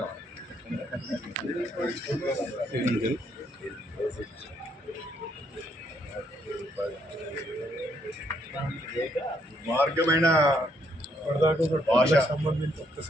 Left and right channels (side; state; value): both; normal; correlation 0.72